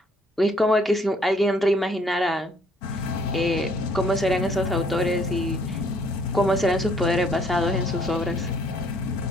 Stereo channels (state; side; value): normal; both; correlation 0.63